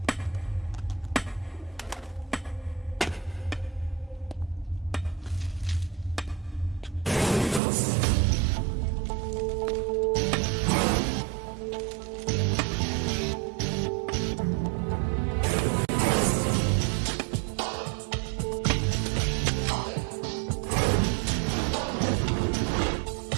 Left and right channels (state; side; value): drops out; left; at 7.6 s